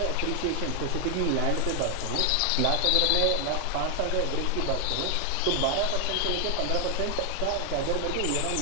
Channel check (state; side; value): different; both; correlation 0.00